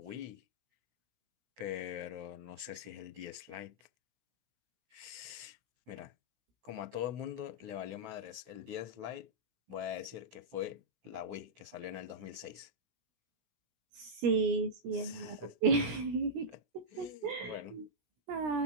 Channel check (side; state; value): left; late; 16 ms